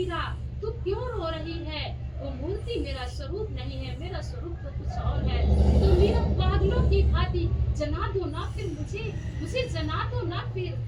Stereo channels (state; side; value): identical; both; correlation 1.00